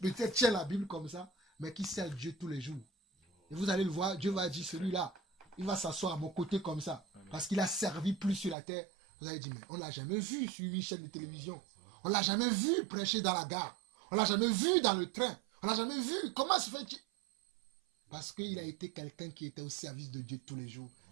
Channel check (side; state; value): left; drops out; at 8.6 s